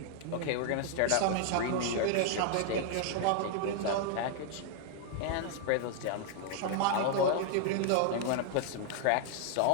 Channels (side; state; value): both; different; correlation 0.00